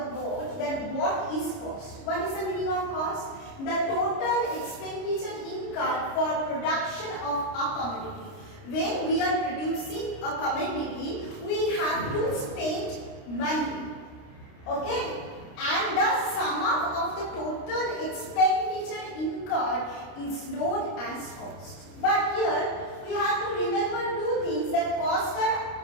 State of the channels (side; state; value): right; late; 29 ms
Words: board that what is cost. What is the meaning of cost? The total expenditure incurred for production of a commodity. When we are producing a commodity, we have to spend money. Okay? And the sum up of the total expenditure incurred is known as cost. But here we have to remember two things, that costs